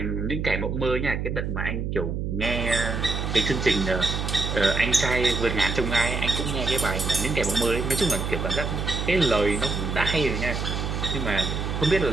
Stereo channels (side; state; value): right; noise; hum, 2 dB below the sound